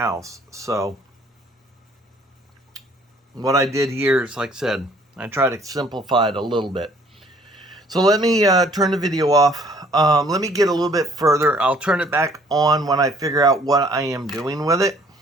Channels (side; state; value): both; normal; correlation 0.59